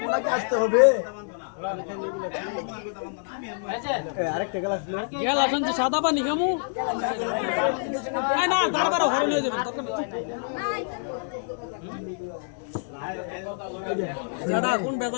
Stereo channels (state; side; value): silent; right; 60 dB below the other